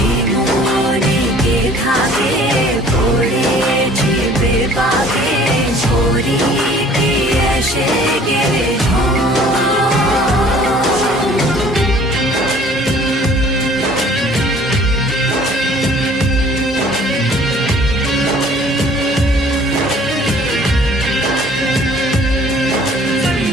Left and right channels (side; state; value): both; normal; correlation 0.53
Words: মনে কে থাকে পড়েছি বেপাকে ছড়ি কি এসে গেলে